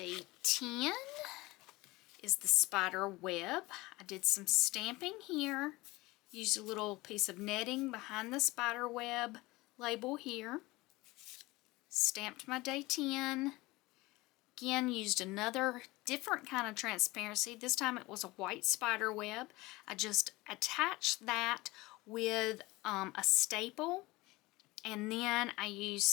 10 is the spider web. I did some stamping here. Used a little piece of netting behind the spider web label here. Stamped my day 10. Again, used another different kind of transparency. This time it was a white spider web. I just attached that with a staple. And then I used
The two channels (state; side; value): quieter; right; 21.1 dB